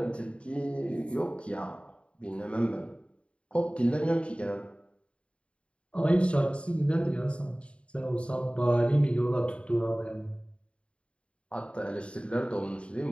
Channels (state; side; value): late; right; 0.058 ms